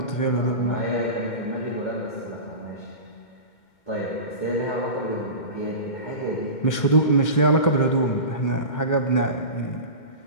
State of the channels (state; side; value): late; right; 2.1 ms